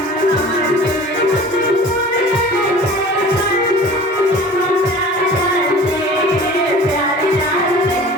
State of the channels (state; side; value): normal; both; correlation 0.43